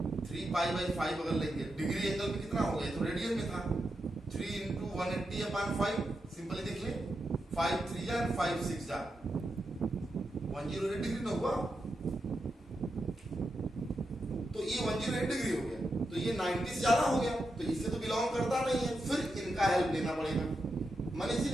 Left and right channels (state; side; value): normal; both; correlation 0.87